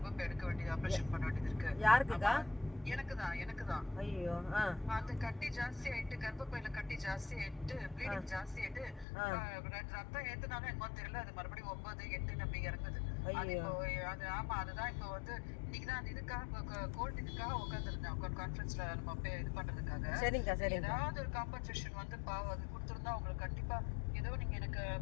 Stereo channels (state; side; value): drops out; right; at 9.1 s